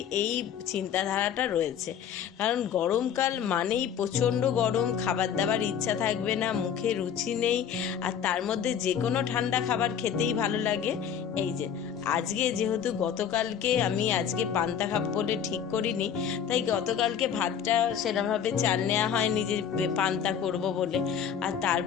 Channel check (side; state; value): right; quieter; 8.3 dB